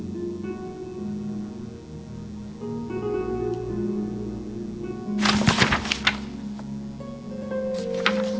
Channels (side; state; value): both; identical; correlation 1.00